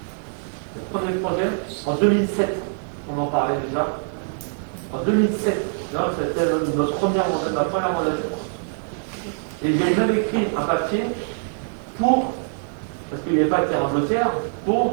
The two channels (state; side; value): silent; left; digital silence